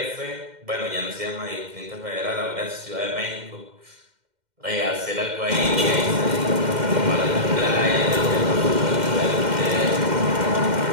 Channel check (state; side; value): late; left; 2.1 ms